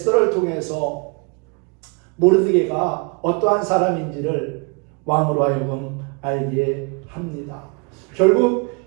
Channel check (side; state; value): left; quieter; 33.4 dB